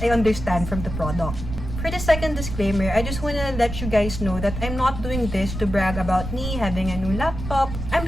I understand from the product. For the second disclaimer, I just wanna let you guys know that I'm not doing this to brag about me having a new laptop. I'm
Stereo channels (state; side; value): noise; right; rumble, 7 dB below the sound